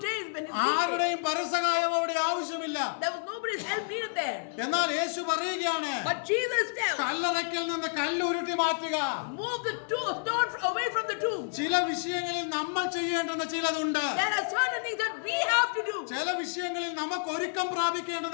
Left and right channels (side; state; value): right; silent; digital silence